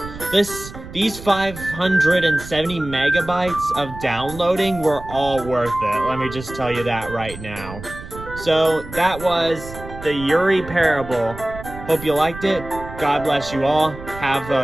These 570 megabytes of downloading were all worth it. Let me just tell you that right now. So that was the Yuri parable. Hope you liked it. God bless you all. Have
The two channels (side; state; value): right; noise; rumble, 13 dB below the sound